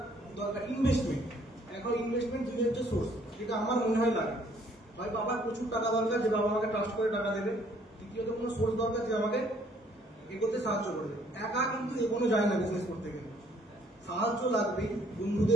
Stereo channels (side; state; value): both; normal; correlation 0.62